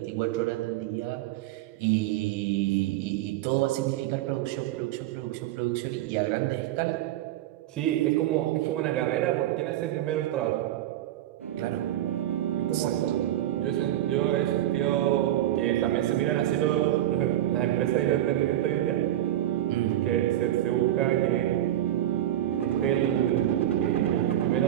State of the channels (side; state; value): left; quieter; 13.1 dB